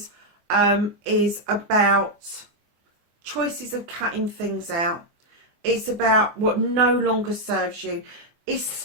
is about choices of cutting things out. It's about what no longer serves you. It's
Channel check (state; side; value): late; left; 24 ms